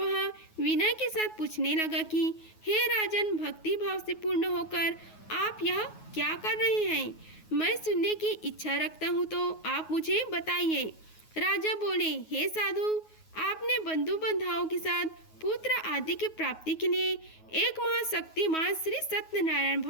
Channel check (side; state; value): right; late; 9.4 ms